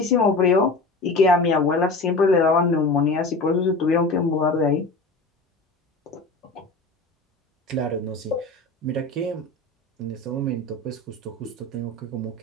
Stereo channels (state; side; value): quieter; right; 3.2 dB